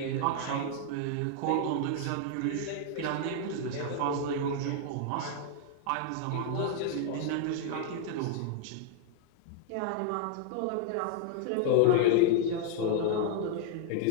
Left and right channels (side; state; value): both; different; correlation 0.00